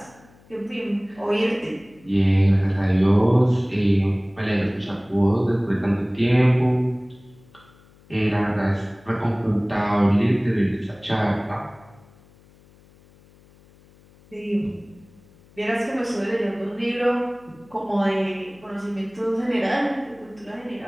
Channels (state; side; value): noise; left; hum, 28 dB below the sound